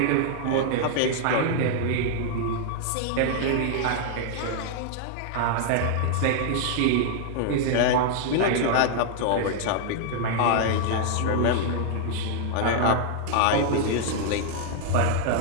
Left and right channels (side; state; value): both; different; correlation -0.01